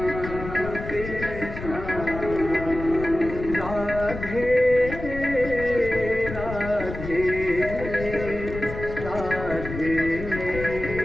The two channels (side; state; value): left; noise; rumble, 9 dB below the sound